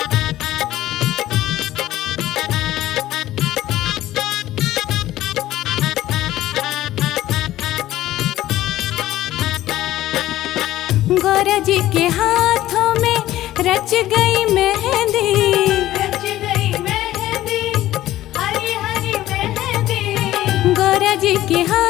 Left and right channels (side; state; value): right; quieter; 14.6 dB